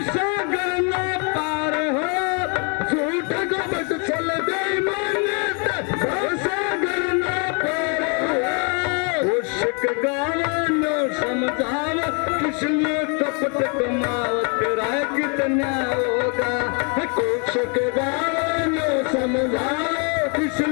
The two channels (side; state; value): right; quieter; 36.5 dB